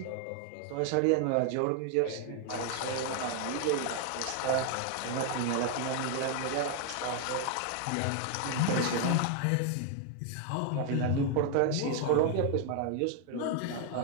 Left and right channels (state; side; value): different; both; correlation 0.01